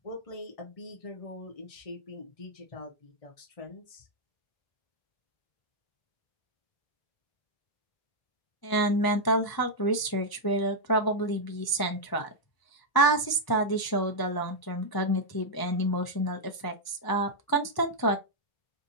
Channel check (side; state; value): right; late; 1.0 ms